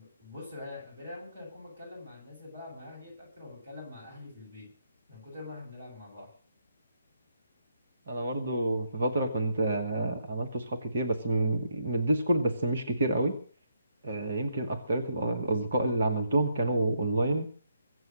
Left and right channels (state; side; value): inverted; both; correlation -0.75